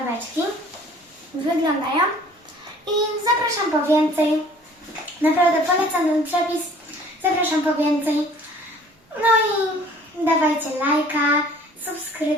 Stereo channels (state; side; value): normal; both; correlation 0.52